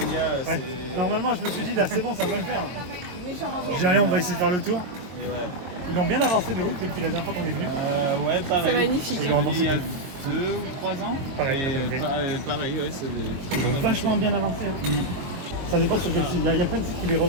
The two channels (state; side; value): late; left; 22 ms